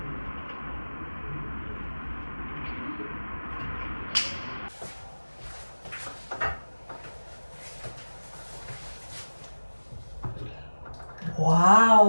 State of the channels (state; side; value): inverted; both; correlation -1.00